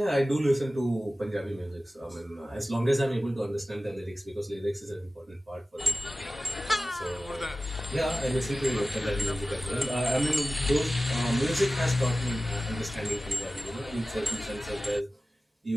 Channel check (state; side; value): normal; both; correlation 0.96